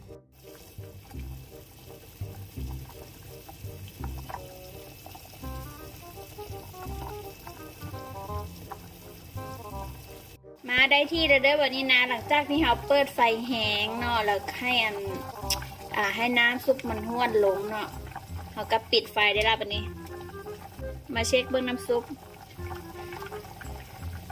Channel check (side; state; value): both; identical; correlation 1.00